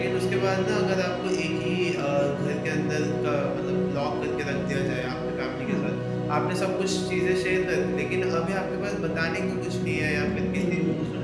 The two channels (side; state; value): both; identical; correlation 1.00